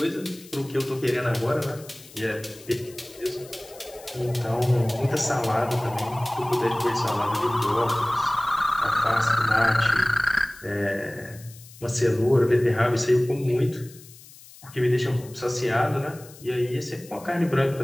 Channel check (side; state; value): left; noise; hiss, 21 dB below the sound